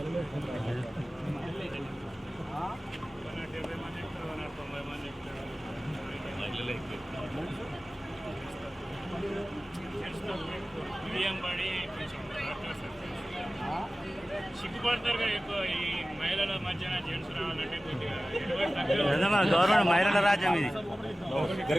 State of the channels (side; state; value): both; normal; correlation 0.96